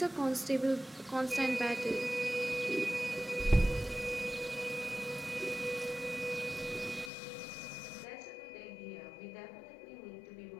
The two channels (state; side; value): drops out; right; at 7.1 s